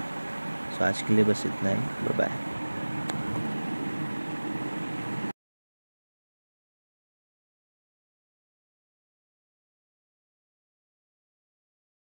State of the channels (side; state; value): both; inverted; correlation -1.00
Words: सो आज के लिए बस इतना ही। Bye bye.